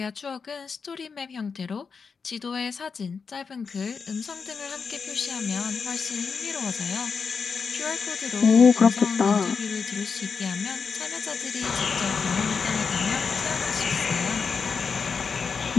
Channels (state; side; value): quieter; right; 5.5 dB